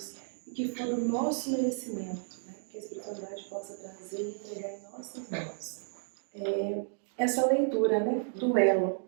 E que for do nosso merecimento, né, que a espiritualidade possa trazer e entregar em nossas mãos. Essa leitura, né, do elo.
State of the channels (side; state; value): left; silent; digital silence